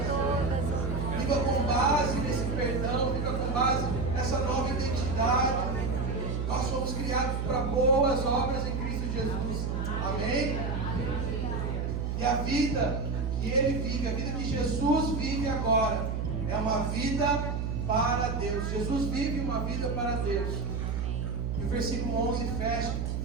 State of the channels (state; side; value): noise; right; hum, 1 dB below the sound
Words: todas. Viva com base nesse perdão, viva com base nessa nova identidade. Nós somos criados para boas obras em Cristo Jesus. Amém? E a vida que Ele vive, a vida que Jesus vive agora, é uma vida para Deus. Jesus vive uma vida para Deus. E o versículo 11